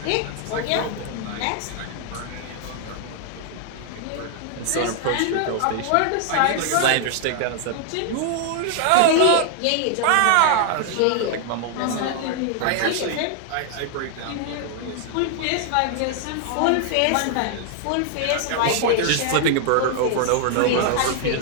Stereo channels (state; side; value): different; both; correlation 0.00